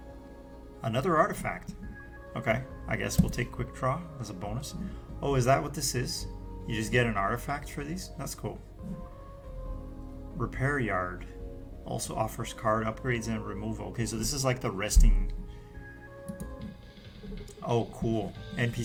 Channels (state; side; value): identical; both; correlation 1.00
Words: Another artifact. Okay, I guess we'll take quick draw as a bonus. Oh, is that what this is? You just get an artifact for these? That's cool. Repair yard also offers card upgrades and removal. Okay, so this is like the resting. Oh, cool.